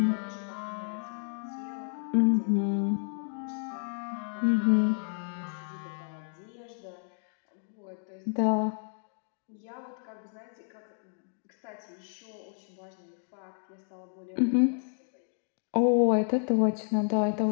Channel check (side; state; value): right; silent; 57 dB below the other